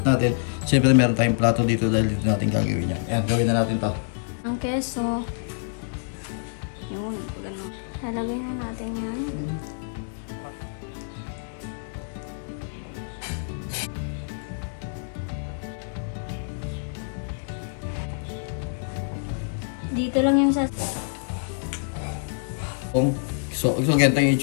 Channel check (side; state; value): right; silent; digital silence